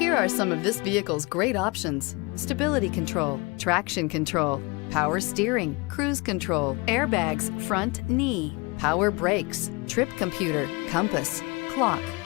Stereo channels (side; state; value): right; quieter; 27.0 dB